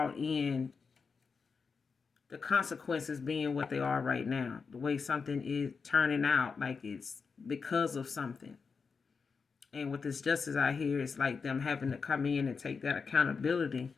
in the consequences being what they are right now. The way something is turning out, like it's because of something. And with this justice out here, it's like them having to come in and take that accountability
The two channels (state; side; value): quieter; right; 5.2 dB